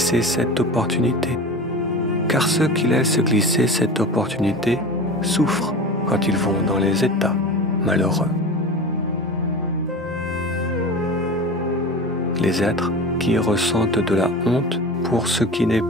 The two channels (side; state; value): both; normal; correlation 0.32